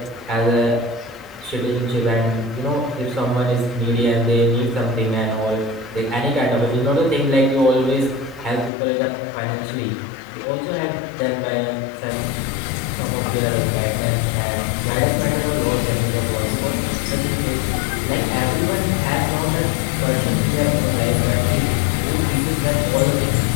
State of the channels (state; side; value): drops out; right; at 8.7 s